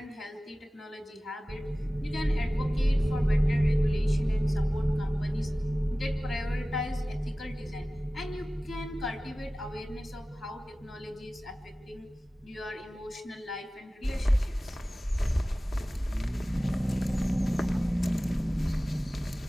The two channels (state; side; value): normal; both; correlation 0.97